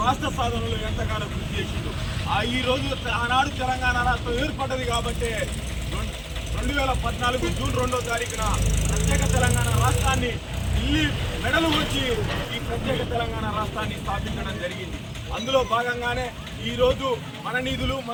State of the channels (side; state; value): both; identical; correlation 1.00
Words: రాష్ట్ర సాధనలో ఎంతగానో కృషి చేసిండు. ఈ రోజు ఆనాడు తెలంగాణ రాష్ట్రం ఏర్పడ్డది కాబట్టి 2014 జూన్ 2వ తారీఖున ప్రత్యేక తెలంగాణ రాష్ట్రాన్ని ఢిల్లీ మెడలు వచ్చి ఈ ప్రత్యేక తెలంగాణ రాష్ట్రాన్ని స్థాపించడం జరిగింది. అందులో భాగంగానే ఈరోజు మన నిధులు